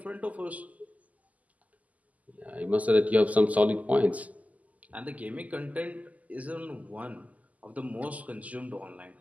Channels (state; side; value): late; left; 0.075 ms